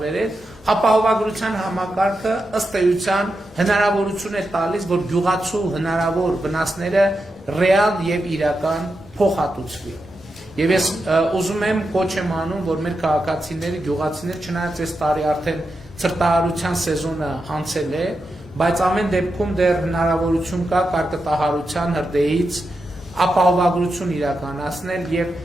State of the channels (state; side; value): normal; both; correlation 0.88